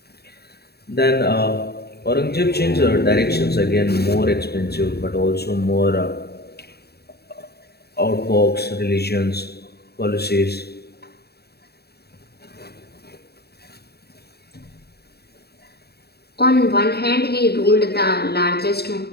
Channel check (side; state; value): right; late; 0.47 ms